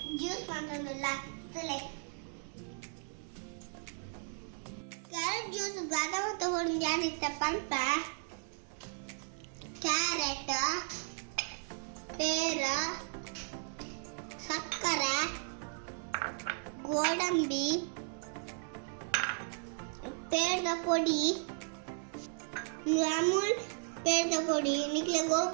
juice ಮಾಡೋದಿಲ್ಲ. ಕ್ಯಾರೆಟ್ ಜ್ಯೂಸ್ ಬಾದಾಮ ತಗೊಂಡು ಏನಿತ್ತಪ್ಪ ಅಂತ ಕ್ಯಾರೆಟ್, ಪೇರ, ಸಕ್ಕರೆ, ಗೋಡಂಬಿ, ಪೇರದ ಪೊಡಿ, ಅಮೂಲ್ ಪೇರದ ಪೊಡಿ, ನಿಕ್ಲೆ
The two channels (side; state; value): left; silent; 54 dB below the other